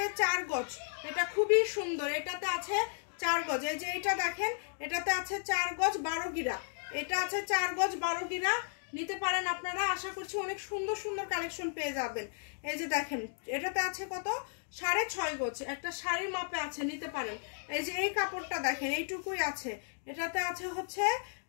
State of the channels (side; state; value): right; silent; digital silence